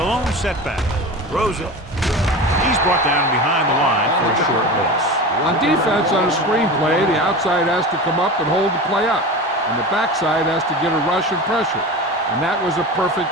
lone setback. Throws it. He's brought down behind the line for a short loss. On defense, on a screen play, the outside has to come up and hold the play up, and the backside has to get a rush and pressure, and that was a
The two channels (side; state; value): both; normal; correlation 0.29